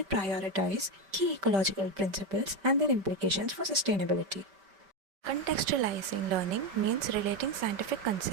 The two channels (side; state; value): left; late; 5.1 ms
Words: prioritize key ecological principles and their implications for sustainability. Contextualizing learning means relating scientific